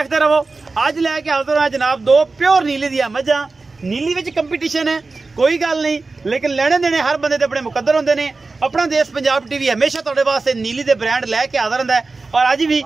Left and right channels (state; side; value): quieter; left; 3.8 dB